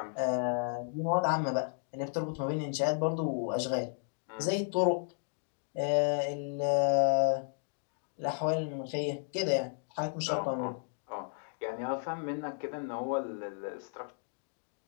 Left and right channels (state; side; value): silent; right; 55 dB below the other